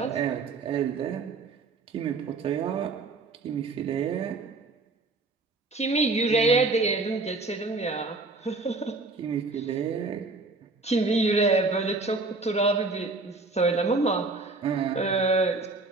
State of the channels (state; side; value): quieter; left; 3.6 dB